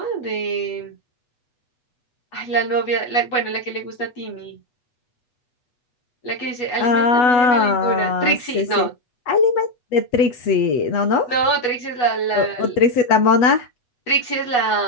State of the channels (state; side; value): late; right; 8.1 ms